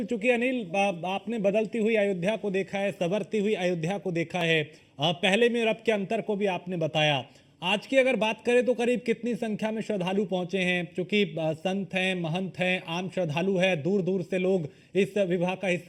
चूंकि अनिल आपने बदलती हुई अयोध्या को देखा है, संवरती हुई अयोध्या को देखा है, पहले में और अब के अंतर को भी आपने बताया। आज की अगर बात करें तो करीब कितनी संख्या में श्रद्धालु पहुंचे हैं? क्योंकि संत हैं, महंत हैं, आम श्रद्धालु है, दूर दूर से लोग इस विवाह का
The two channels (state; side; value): identical; both; correlation 1.00